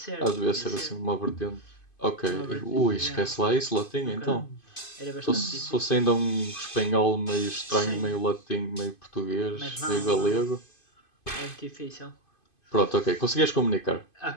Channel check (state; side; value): late; right; 2.5 ms